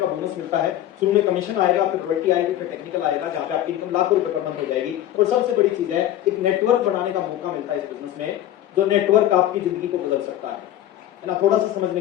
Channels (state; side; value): quieter; right; 12.4 dB